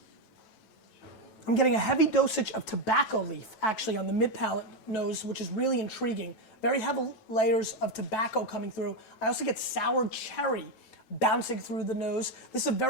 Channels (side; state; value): right; late; 9.1 ms